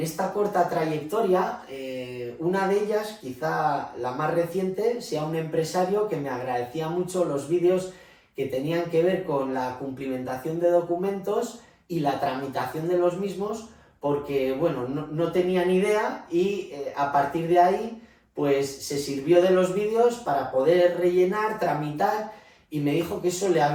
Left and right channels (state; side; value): identical; both; correlation 1.00